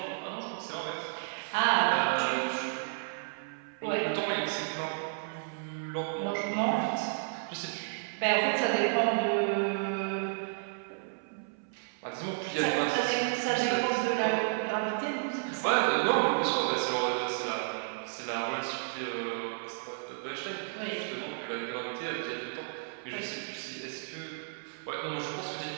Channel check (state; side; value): silent; left; 56 dB below the other